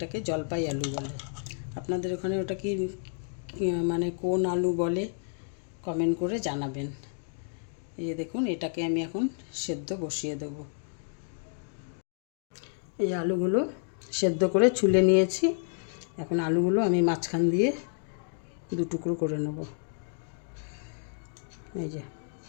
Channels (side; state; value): right; silent; digital silence